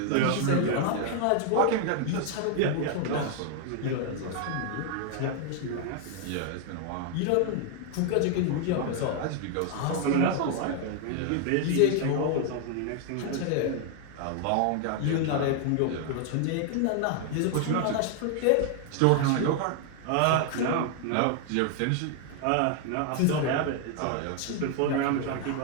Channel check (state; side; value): different; both; correlation 0.00